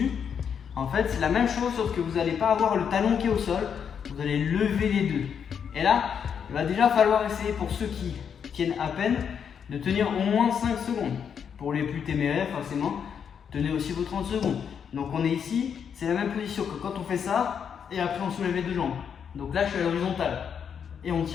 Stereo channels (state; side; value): quieter; right; 7.5 dB